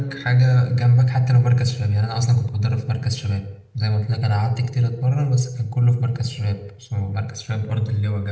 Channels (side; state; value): both; identical; correlation 1.00